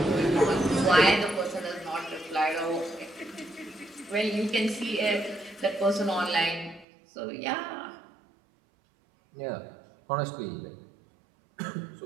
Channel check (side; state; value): left; drops out; at 6.9 s